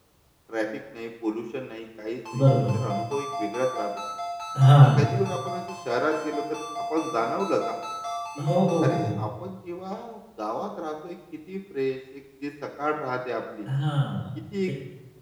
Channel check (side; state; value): both; identical; correlation 1.00